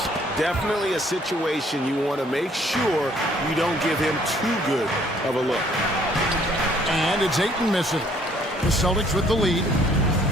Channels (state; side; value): normal; both; correlation 0.62